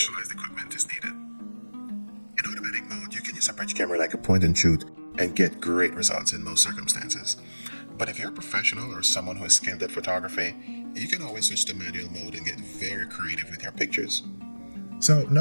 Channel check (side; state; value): both; inverted; correlation -1.00